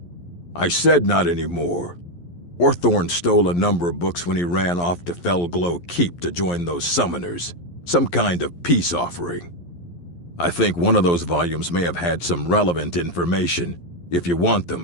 I said not anymore. Orthorn stole a number of books when he ran off to Felglow Keep to join those summoners. Some kind of peace offering. I think one of those volumes may have had some relevant information. If you want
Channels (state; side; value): late; right; 11 ms